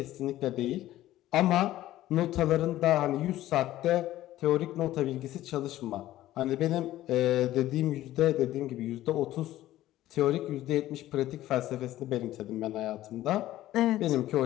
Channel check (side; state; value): right; quieter; 14.6 dB